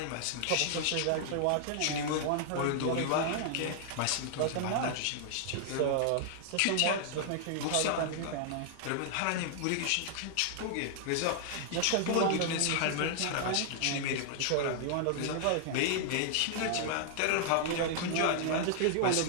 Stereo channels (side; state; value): both; different; correlation -0.01